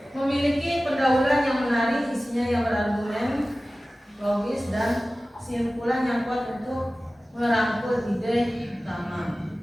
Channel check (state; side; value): normal; both; correlation 0.96